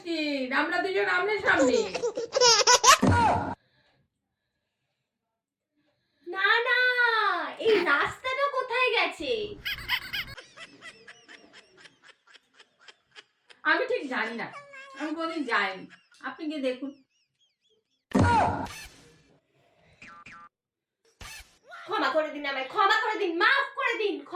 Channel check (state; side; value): identical; both; correlation 1.00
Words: আমরা দুজন আমনের সামনে। না না, এই রাস্তাটা কোথায় গেছে? আমি ঠিক জানি না, আমি কোনদিন যাইনি, আপনি গিয়ে দেখুন। ক্ষমা করে দিন আমায়, ক্ষমা করে দিন, মাফ করে দিন,